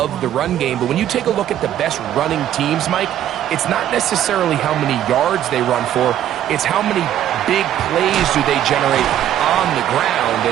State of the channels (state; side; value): quieter; left; 11.4 dB